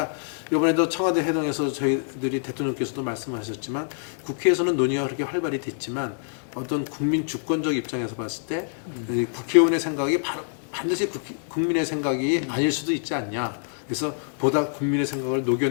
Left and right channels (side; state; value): right; silent; digital silence